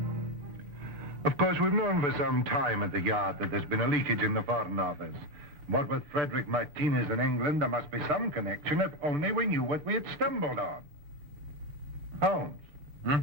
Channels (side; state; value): both; normal; correlation 0.11